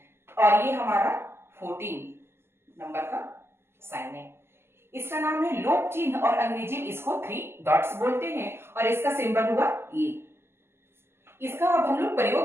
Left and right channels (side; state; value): left; late; 0.12 ms